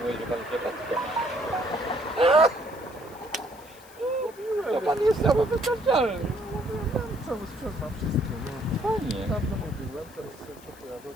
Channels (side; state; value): left; noise; hiss, 23 dB below the sound